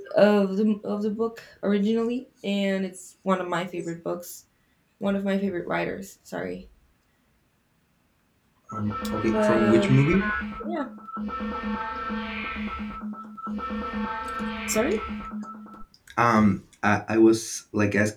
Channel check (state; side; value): identical; both; correlation 1.00